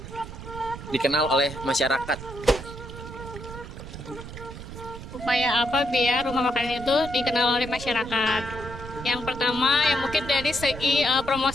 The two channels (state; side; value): noise; right; rumble, 11 dB below the sound